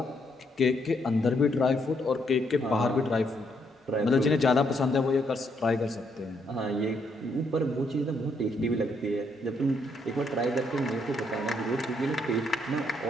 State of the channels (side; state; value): both; normal; correlation 0.74